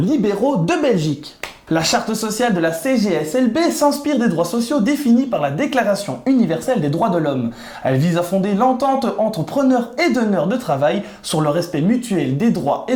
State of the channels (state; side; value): identical; both; correlation 1.00